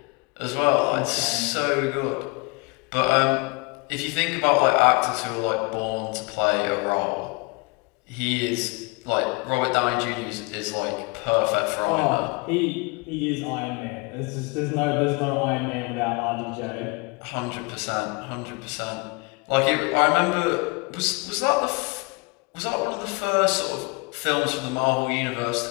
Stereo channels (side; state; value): right; quieter; 29.1 dB